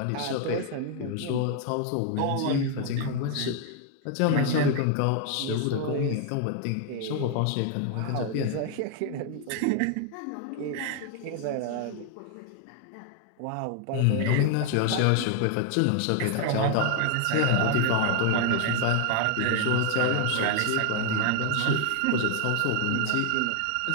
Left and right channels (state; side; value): different; both; correlation 0.00